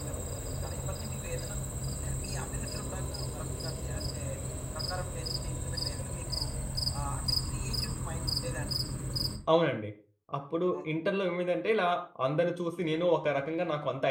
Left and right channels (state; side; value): identical; both; correlation 1.00